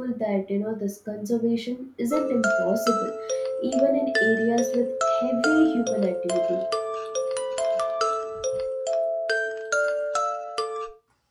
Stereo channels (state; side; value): identical; both; correlation 1.00